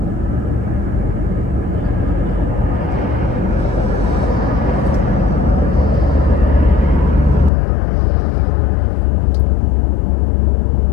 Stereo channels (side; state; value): right; drops out; at 7.5 s